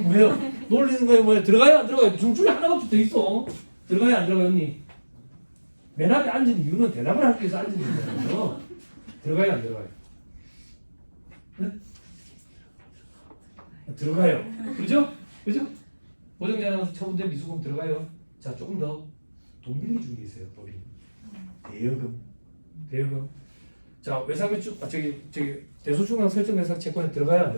뭐예요? 놀리는 거예요? 뭐예요? 들어가요? 안 들어가요? 둘 중에 하나가 붙어 있어. 들어가요? 안 들어가요, 언니? 맨 앞에 앉은 이유는 대답을 하기 위해서 앉은 거예요. 들어가요? 안 들어가요? 네? 들어가요. 그죠? 그죠? 고정자산 처분된 미수금 들어가요. 자, 조금 더 돈 빌리 준 게 있어요, 법이. 대여금. 자, 외상매출, 저기 대소중앙 설정 대상 채권에 들어가요, 안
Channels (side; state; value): both; inverted; correlation -1.00